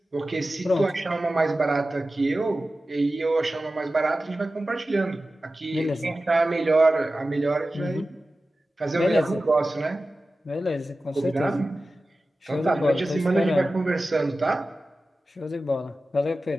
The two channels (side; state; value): both; normal; correlation 0.95